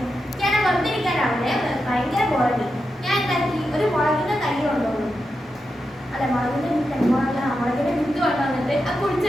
ഞാൻ വെറുതെ ഇരിക്കാനാവില്ലേ, ഭയങ്കര ബോറടി. ഞാൻ എന്താക്കി, ഒരു മുളകിന്റെ തൈ കൊണ്ടുപോകും. അല്ല, മുളകിന്റെ മുളകിന്റെ വിത്ത് കൊണ്ടുവന്നിട്ട് അത്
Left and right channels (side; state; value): both; normal; correlation 0.88